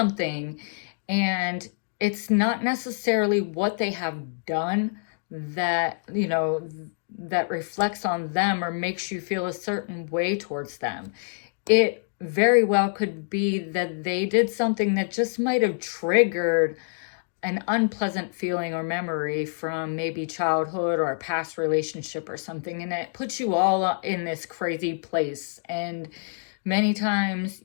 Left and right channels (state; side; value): silent; right; digital silence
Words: and it's not necessarily what they have done that, you know, that reflects on them or makes you feel a certain way towards them. It very well could be that they did something that just might have triggered an unpleasant feeling or memory from maybe childhood or a past relationship or something, and it puts you all in this crazy place. And many times,